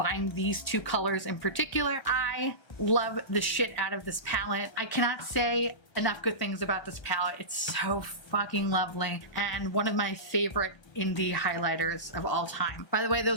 these 2 colors in particular. I love the shit out of this palette. I cannot say enough good things about this palette. It's so fucking lovely and one of my favorite indie highlighters of all time. By the way,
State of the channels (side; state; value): right; late; 1.3 ms